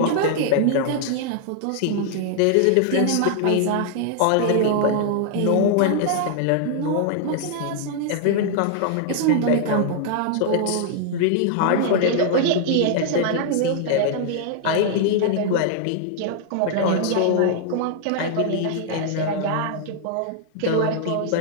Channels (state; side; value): different; both; correlation -0.01